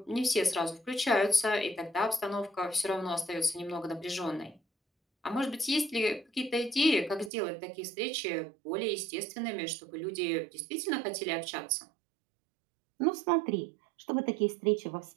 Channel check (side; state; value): left; drops out; at 7.3 s